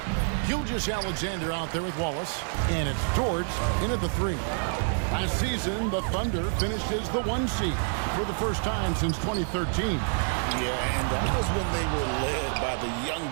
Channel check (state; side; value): silent; left; 57 dB below the other